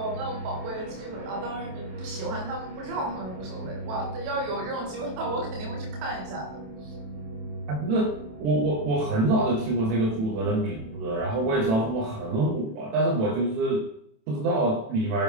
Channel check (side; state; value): left; late; 27 ms